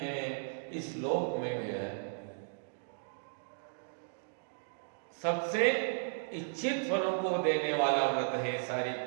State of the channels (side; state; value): left; silent; digital silence